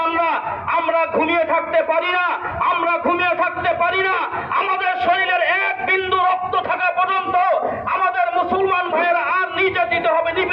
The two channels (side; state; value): both; identical; correlation 1.00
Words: আমরা ঘুমিয়ে থাকতে পারি না। আমরা ঘুমিয়ে থাকতে পারি না। আমাদের শরীরের এক বিন্দু রক্ত থাকা পর্যন্ত আমাদের মুসলমান ভাইয়েরা আর নির্যাতিত হবে,